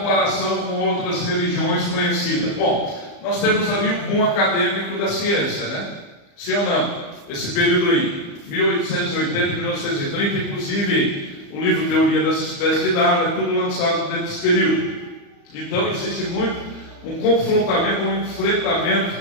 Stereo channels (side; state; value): right; late; 35 ms